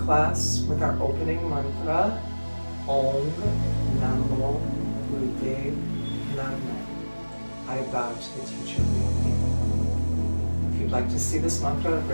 class with our opening mantra, Om Namo Buddhe Namo. I bow to the teacher with me. If you'd like to see this mantra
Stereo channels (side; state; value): both; inverted; correlation -1.00